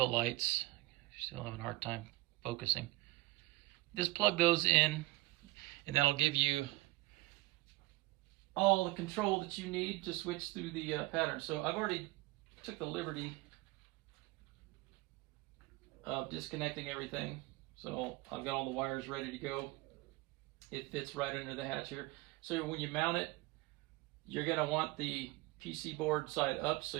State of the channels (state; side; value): quieter; left; 20.6 dB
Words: lights. Still having a hard time focusing. Just plug those in, and that'll give you all the control that you need to switch through the pattern. So I've already took the liberty of disconnecting everything. So I've got all the wires ready to go. It fits right under the hatch here. So when you mount it, you're going to want the PC board side up so